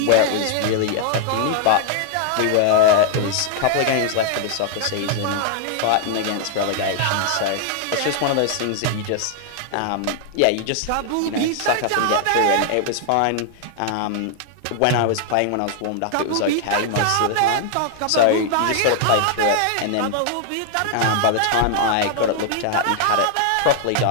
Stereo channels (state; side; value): different; both; correlation 0.00